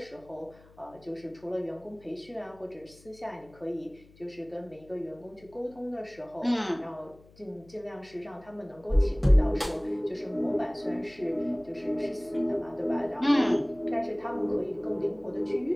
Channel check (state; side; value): noise; left; hum, 25 dB below the sound